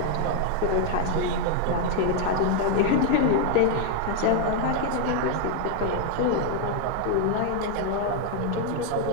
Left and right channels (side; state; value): both; different; correlation 0.00